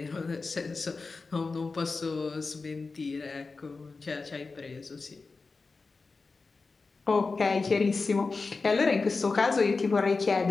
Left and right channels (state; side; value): quieter; right; 4.1 dB